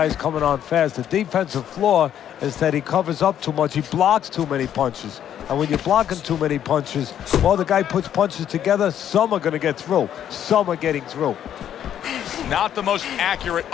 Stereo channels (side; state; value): right; quieter; 10.2 dB